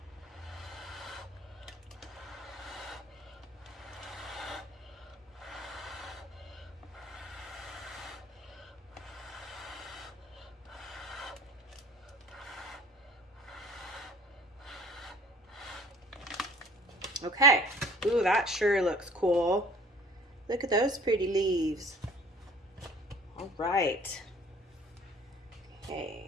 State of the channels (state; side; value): normal; both; correlation 0.52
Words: Okay. Ooh, that sure looks cool. Look at those pretty leaves. All right.